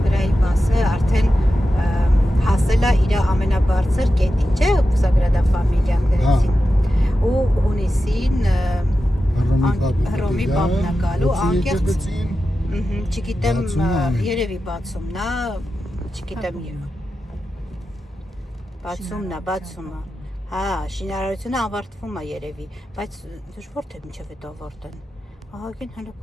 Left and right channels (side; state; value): both; normal; correlation 0.92